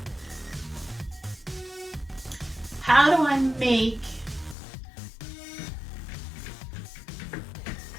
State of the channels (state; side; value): drops out; right; at 4.5 s